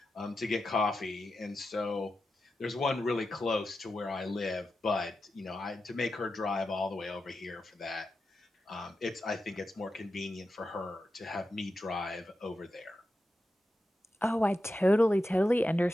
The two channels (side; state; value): both; normal; correlation 0.90